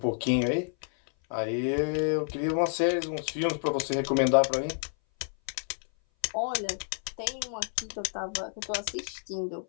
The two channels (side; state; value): right; silent; 57 dB below the other